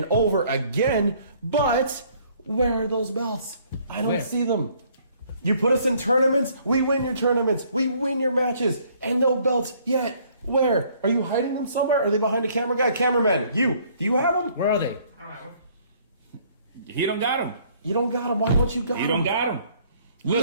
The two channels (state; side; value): inverted; both; correlation -0.62